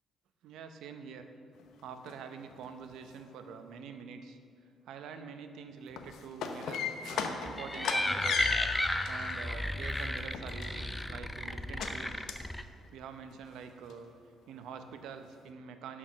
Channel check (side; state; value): both; normal; correlation 0.80